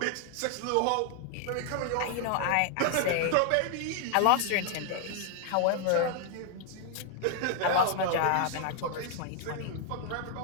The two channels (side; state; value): both; different; correlation 0.00